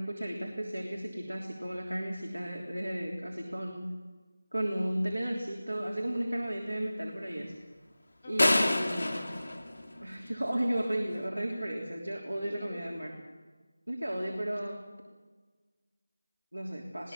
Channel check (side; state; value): both; inverted; correlation -0.97